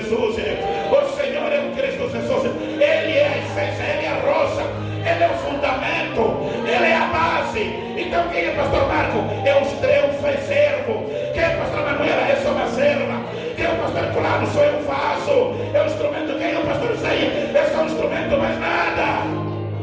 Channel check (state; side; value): identical; both; correlation 1.00